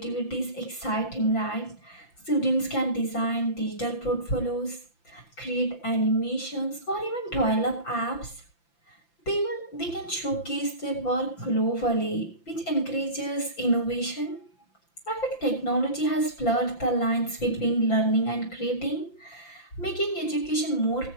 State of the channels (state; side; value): late; right; 5.9 ms